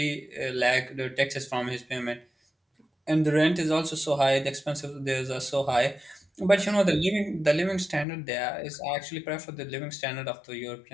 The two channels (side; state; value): right; drops out; at 8.1 s